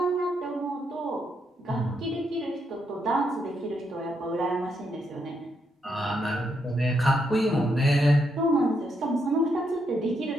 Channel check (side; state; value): both; normal; correlation 0.78